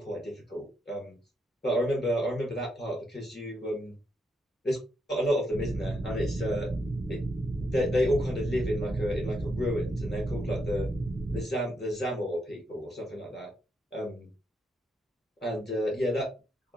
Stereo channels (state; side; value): normal; both; correlation 0.79